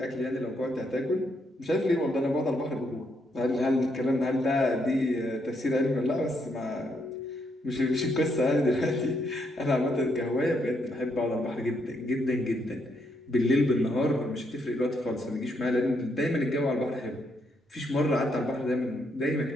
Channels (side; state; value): both; normal; correlation 0.76